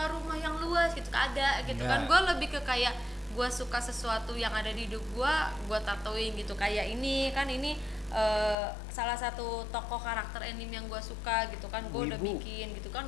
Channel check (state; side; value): drops out; right; at 8.6 s